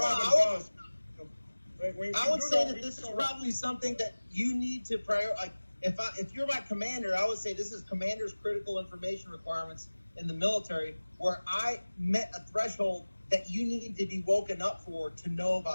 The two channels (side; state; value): both; inverted; correlation -1.00